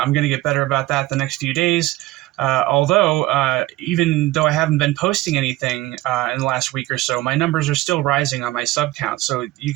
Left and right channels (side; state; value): left; quieter; 18.0 dB